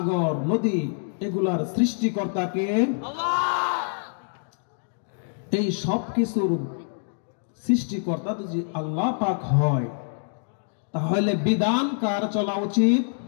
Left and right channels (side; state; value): right; silent; digital silence